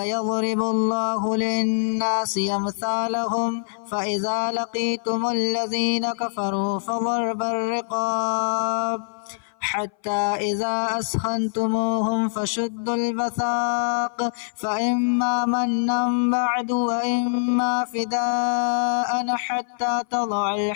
الله للناس أمثالهم فإذا لقيتم الذين كفروا فضرب الرقاب حتى إذا أسخنتموهم فشدوا الوثاق فإما منا بعد وإما فداء حتى تضع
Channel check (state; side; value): silent; right; 58 dB below the other